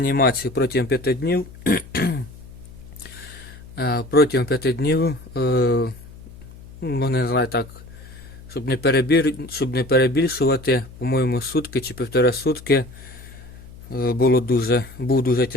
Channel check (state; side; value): noise; left; hum, 18 dB below the sound